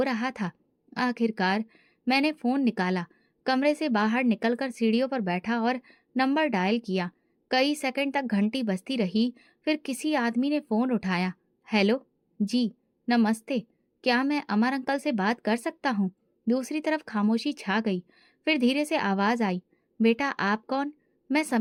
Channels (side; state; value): both; identical; correlation 1.00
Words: रहा था। आखिरकार मैंने फोन निकाला, कमरे से बाहर निकलकर सीढ़ियों पर बैठा और नंबर डायल किया। कई सेकंड तक घंटी बजती रही, फिर किसी आदमी ने फोन उठाया। हेलो जी, नमस्ते, क्या मैं अमर अंकल से बात कर सकता हूँ? दूसरी तरफ खामोशी छा गई। फिर धीरे से आवाज आई, बेटा आप कौन? मैं